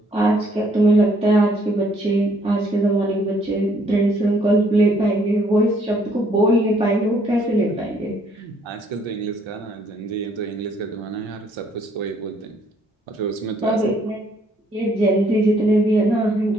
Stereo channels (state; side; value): normal; both; correlation 0.66